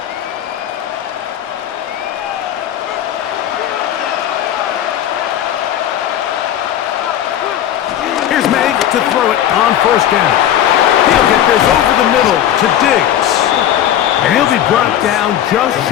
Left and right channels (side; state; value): right; quieter; 11.0 dB